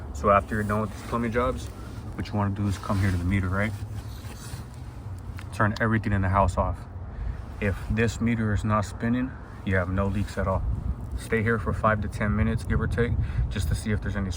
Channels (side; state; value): both; identical; correlation 1.00